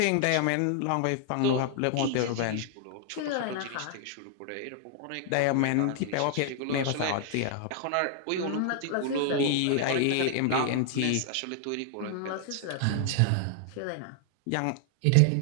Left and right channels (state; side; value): different; both; correlation 0.00